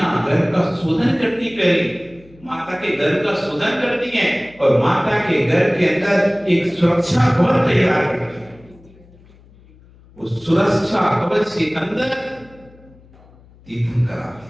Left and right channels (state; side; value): noise; left; hum, 26 dB below the sound